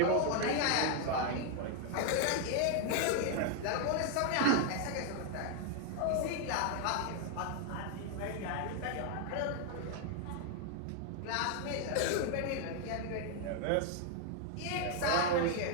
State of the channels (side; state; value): both; different; correlation 0.00